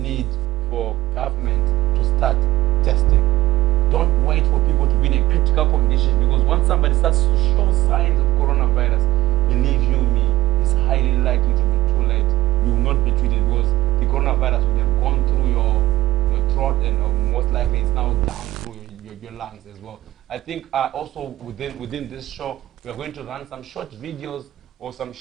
for government to start testing. Don't wait for people to be in a critical condition, because once somebody starts to show signs of coronavirus, believe you me, it's highly likely to be too late. You will not be treated, because the coronavirus would have gone through your throat, and most likely it's now down through your lungs as well. I think also within this show, we are going to run some short videos or some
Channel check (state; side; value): quieter; left; 16.8 dB